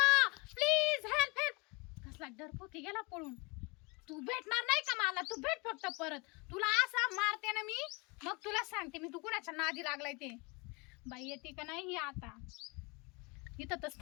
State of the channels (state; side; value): quieter; right; 28.5 dB